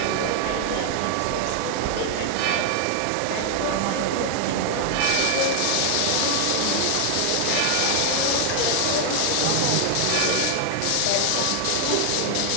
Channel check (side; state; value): both; different; correlation 0.00